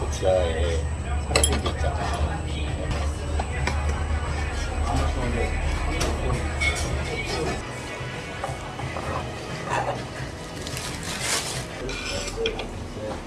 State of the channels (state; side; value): identical; both; correlation 1.00